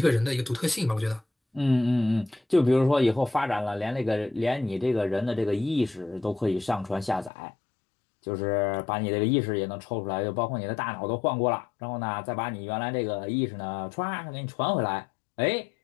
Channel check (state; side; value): drops out; right; at 7.3 s